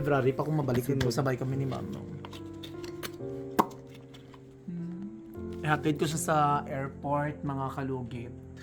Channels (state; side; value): identical; both; correlation 1.00